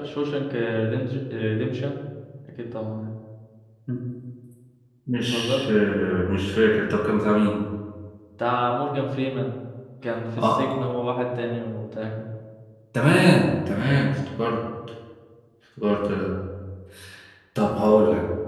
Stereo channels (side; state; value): both; identical; correlation 1.00